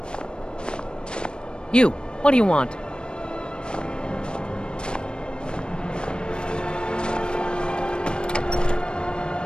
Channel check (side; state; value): right; late; 0.053 ms